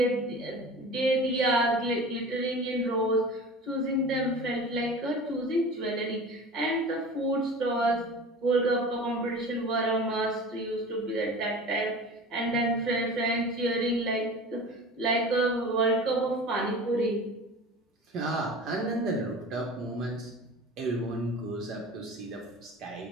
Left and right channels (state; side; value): normal; both; correlation 0.37